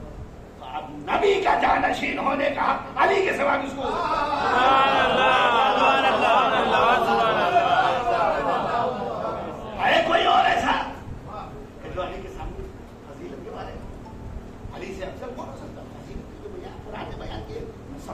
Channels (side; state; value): both; identical; correlation 1.00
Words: تو اب نبی کا جانشین ہونے کا علی کے سوا کس کو ہے؟ کوئی اور ایسا کہ جو علی کے سامنے فضیلت کے بارے میں علی سے افضل کون ہو سکتا؟ فضیلت کی جو بیان قرآن نے بیان کی میں